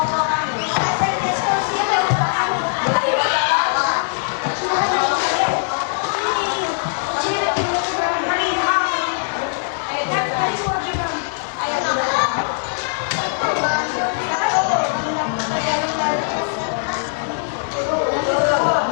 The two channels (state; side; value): silent; right; digital silence